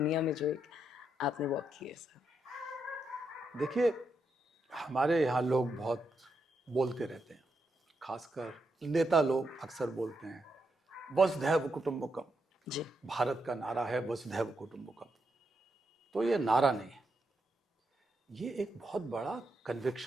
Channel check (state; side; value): normal; both; correlation 0.82